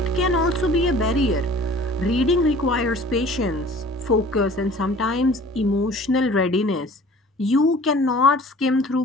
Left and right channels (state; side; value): normal; both; correlation 0.48